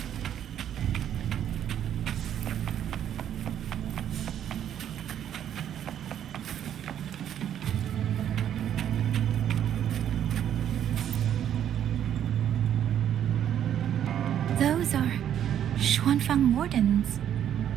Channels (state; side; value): quieter; left; 10.1 dB